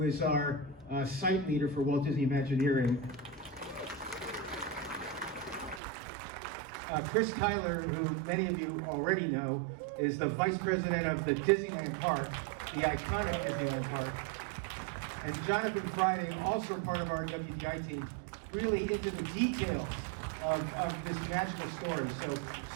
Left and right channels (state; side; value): drops out; left; at 5.8 s